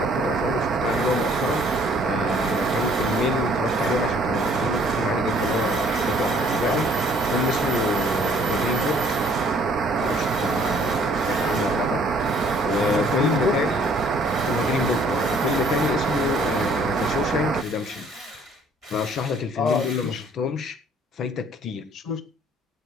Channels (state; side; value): normal; both; correlation 0.59